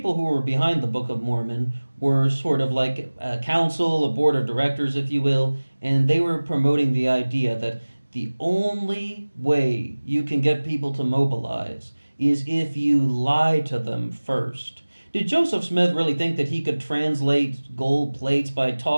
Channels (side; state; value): both; inverted; correlation -1.00